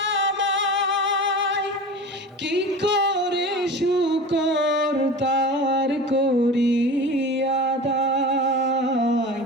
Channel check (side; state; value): both; normal; correlation 0.33